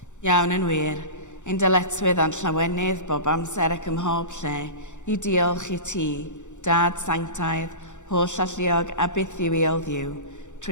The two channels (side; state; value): right; late; 0.85 ms